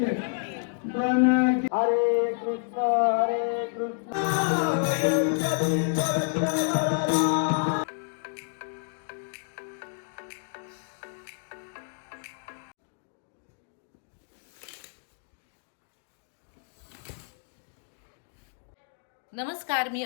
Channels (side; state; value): right; silent; digital silence